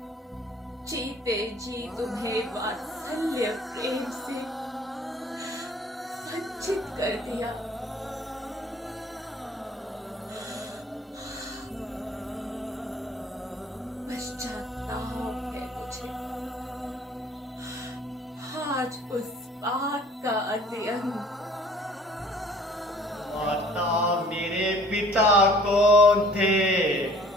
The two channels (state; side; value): normal; both; correlation 0.52